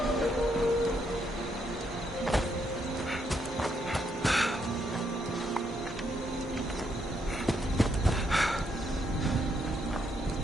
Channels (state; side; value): normal; both; correlation 0.76